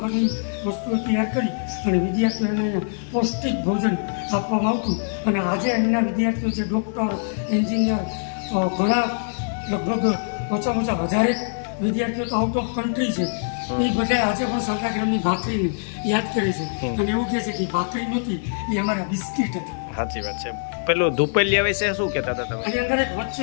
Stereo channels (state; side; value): silent; right; digital silence